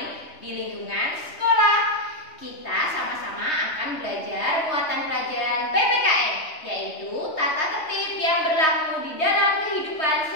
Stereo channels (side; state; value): right; late; 3.2 ms